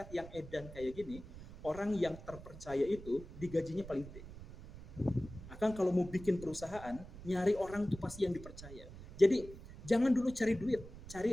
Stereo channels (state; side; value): noise; right; rumble, 15 dB below the sound